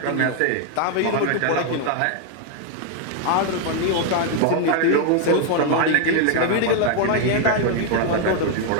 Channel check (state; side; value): different; both; correlation 0.00